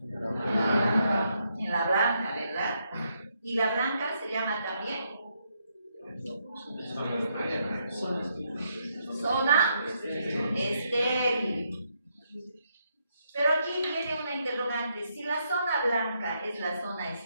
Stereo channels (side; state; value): both; inverted; correlation -0.77